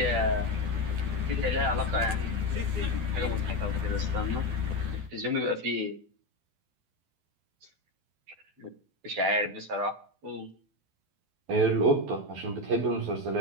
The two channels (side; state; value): left; late; 12 ms